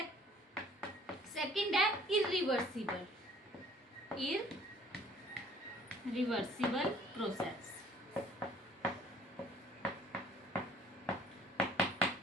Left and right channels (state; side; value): normal; both; correlation 0.55